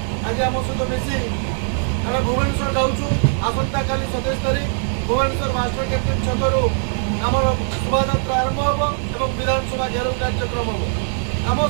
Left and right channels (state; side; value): silent; left; 65 dB below the other